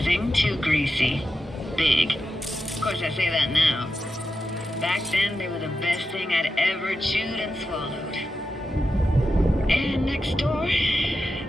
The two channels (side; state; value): both; normal; correlation 0.90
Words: too greasy. Big. Of course, I say that now. Back then, they were the best thing I'd ever chewed and swallowed. And next door,